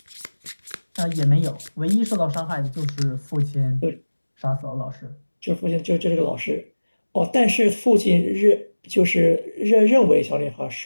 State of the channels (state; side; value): inverted; both; correlation -1.00